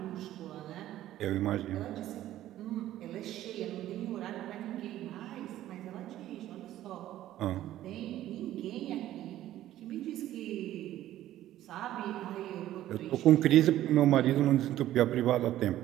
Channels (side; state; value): left; quieter; 13.5 dB